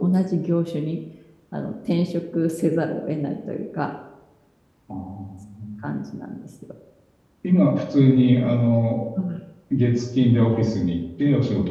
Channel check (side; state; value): both; identical; correlation 1.00